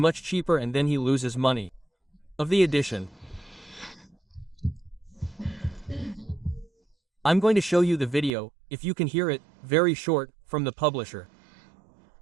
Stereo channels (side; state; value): left; drops out; at 8.3 s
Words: cheaper and then he loses money. Of the edition. I'm going to show you the video, if you can hear it, very short, from the publisher.